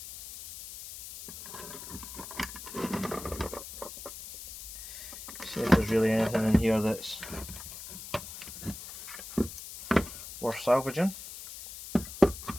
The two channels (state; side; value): noise; left; hiss, 11 dB below the sound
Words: See if there's really anything in here that's worth salvaging.